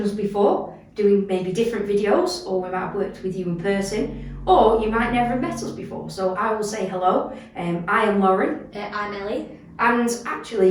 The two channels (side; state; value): both; identical; correlation 1.00